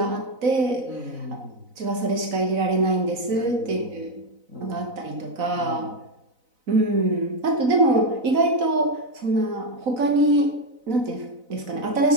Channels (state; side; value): late; left; 4.0 ms